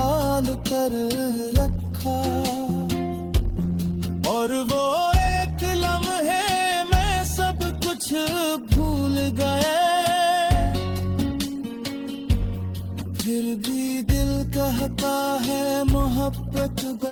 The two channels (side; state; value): both; identical; correlation 1.00